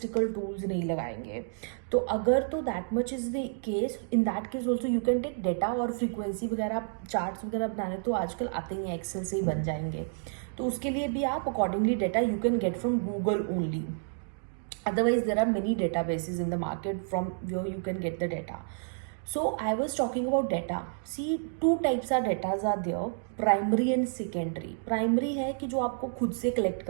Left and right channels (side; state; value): left; silent; digital silence